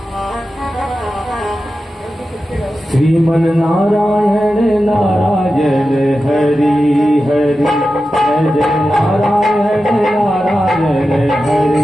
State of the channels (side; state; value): both; normal; correlation 0.92